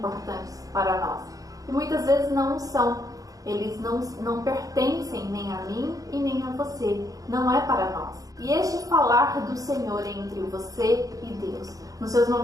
para nós. E muitas vezes não são. Eles não pertencem nem a mim e nem a você. Não é para nós. E este falar do Senhor entre você e Deus, nos seus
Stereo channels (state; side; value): late; left; 0.17 ms